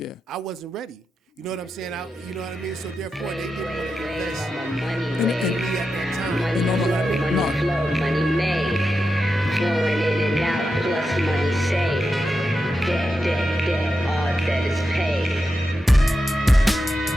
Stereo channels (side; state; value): both; normal; correlation 0.89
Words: I wasn't ready. You know what I'm saying? You know what I mean? So therefore, they didn't want to invest Money in made, me at that time. money flow, money made, flowing in and out, plus money saved. Debt, all that is paid.